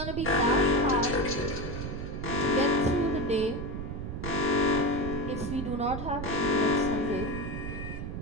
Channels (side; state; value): right; noise; rumble, 6 dB below the sound